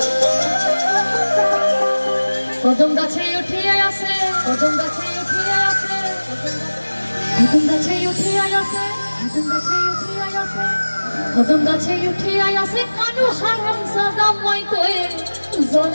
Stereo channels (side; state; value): both; inverted; correlation -1.00